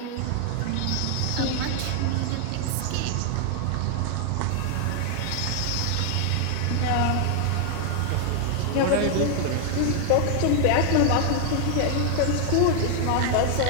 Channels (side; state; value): both; different; correlation 0.00